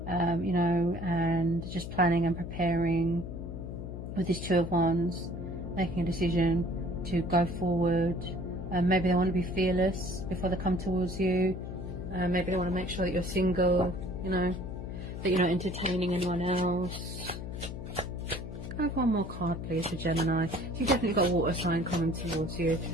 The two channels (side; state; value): left; noise; hum, 7 dB below the sound